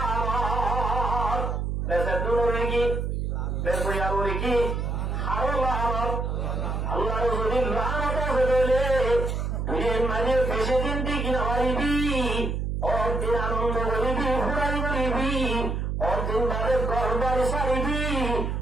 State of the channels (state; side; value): noise; right; hum, 1 dB below the sound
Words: বেসে দূরে কি বেসয়া বলে কি আরো লানত আল্লাহর যদি লানত আছে বলে দুনিয়ার মাঝে বেশি দিন ঠিক না পারিবি অর্দিন আনন্দ করিবি ফুরাই করিবি অর্দিন বাদে গরবার সারিবি